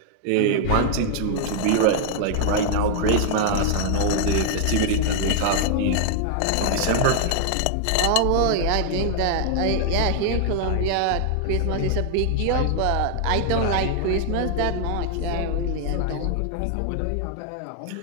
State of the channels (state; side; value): different; both; correlation 0.00